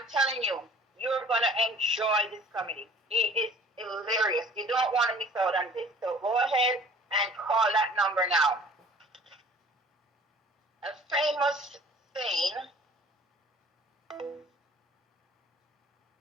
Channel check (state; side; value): normal; both; correlation 0.49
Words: telling you, you're going to enjoy this comedy. He is hilarious. You don't want to miss out on this. So go ahead and call that number now.